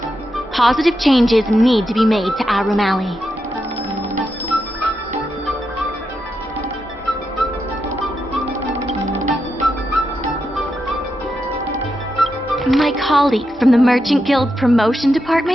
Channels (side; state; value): both; normal; correlation 0.86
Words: positive changes need to be made to Aurum Alley. My colleagues from the Merchant Guild's promotion